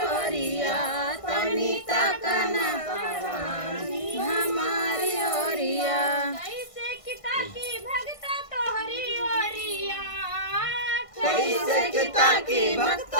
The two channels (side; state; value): right; late; 1.5 ms